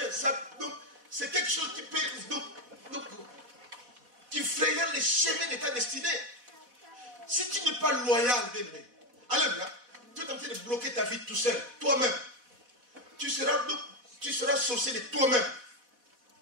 C'est quelque chose qui peut qui fraye les chemins de ta destinée. Si tu n'es pas loyal, bien aimé, allez là, tu es en train de bloquer ta vie tout seul, toi-même. Tu seras sorcier de toi-même.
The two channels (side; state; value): left; late; 4.1 ms